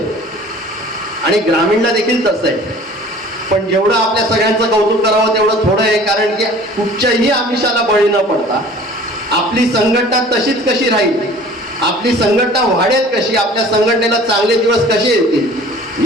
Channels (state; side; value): normal; both; correlation 0.47